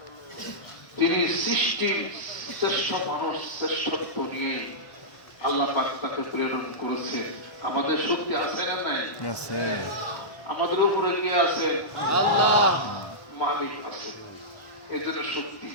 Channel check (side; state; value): right; late; 1.2 ms